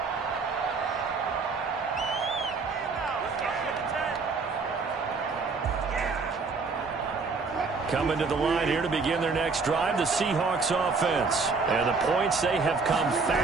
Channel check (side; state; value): left; quieter; 4.5 dB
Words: Coming to the line here to begin their next drive, the Seahawks offense. And the points, they have come